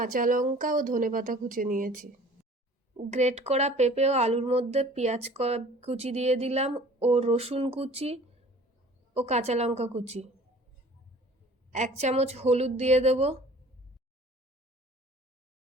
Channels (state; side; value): normal; both; correlation 0.48